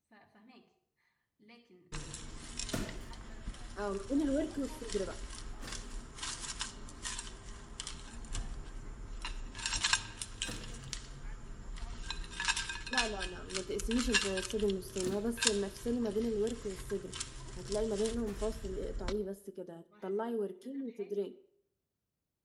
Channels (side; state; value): both; identical; correlation 1.00